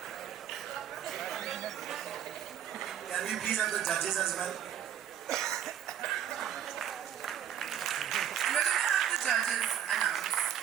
Can we please have the judges as well? And we're going to have the judges announce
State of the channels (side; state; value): left; quieter; 10.0 dB